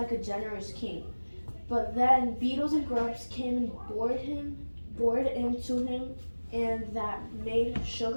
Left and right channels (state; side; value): inverted; both; correlation -1.00